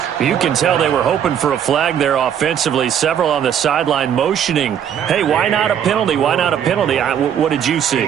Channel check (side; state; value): left; quieter; 9.0 dB